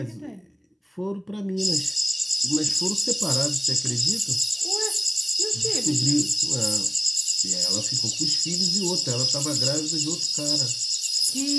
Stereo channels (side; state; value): both; identical; correlation 1.00